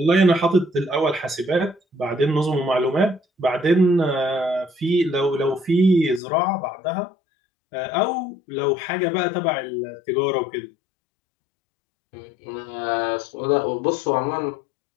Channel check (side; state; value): right; drops out; at 6.2 s